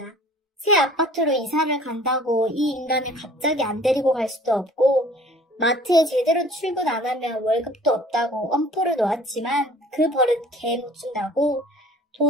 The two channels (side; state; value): both; normal; correlation 0.49